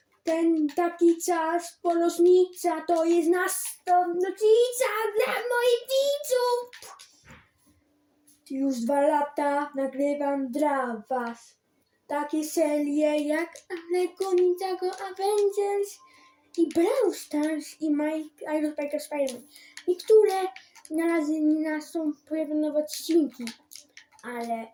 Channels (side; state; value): both; identical; correlation 1.00